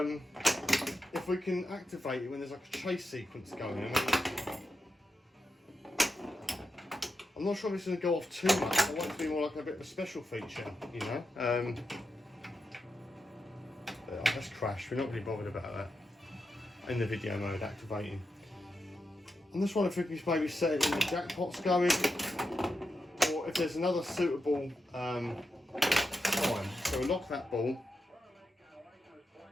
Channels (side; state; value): both; normal; correlation 0.87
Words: if we can activate it when there's like a chase sequence going. I'm not sure if it's going to go off too much. I want it to be more like a bit of a special feature, you know. Let's crash. We're not really bothered about that in the video mode activating. I'm just wondering if we can maybe set it in the jackpots going, or if there's another suitable time. So we'll lock that ball.